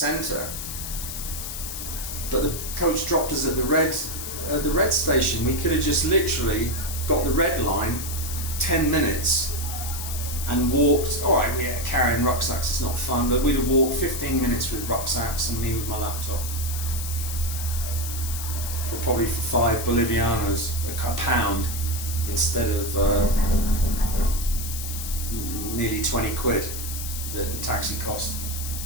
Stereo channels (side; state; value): left; noise; hiss, 7 dB below the sound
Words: But the coach dropped us at the red station. We could have just literally got the red line, 10 minutes, and walked. All right, yeah, carrying rucksacks is not fun, but we'd have walked 15 minutes with rucksacks and me with my laptop. Probably for 5 Bolivianos, a pound, instead of nearly 20 quid, the taxi cost.